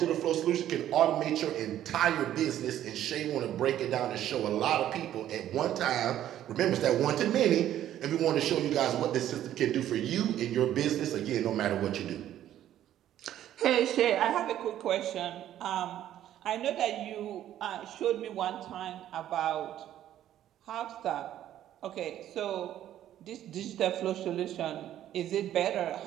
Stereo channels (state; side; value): quieter; left; 11.9 dB